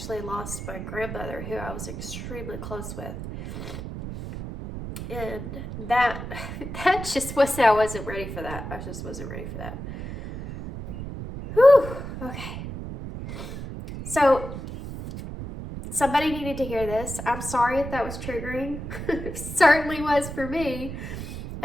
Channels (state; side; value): noise; right; rumble, 8 dB below the sound